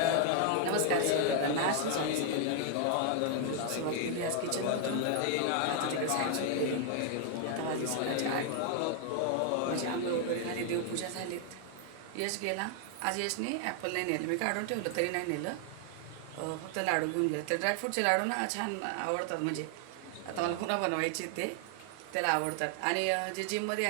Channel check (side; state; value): both; different; correlation 0.00